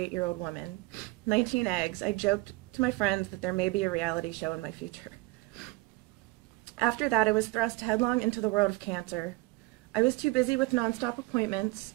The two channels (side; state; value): left; quieter; 21.0 dB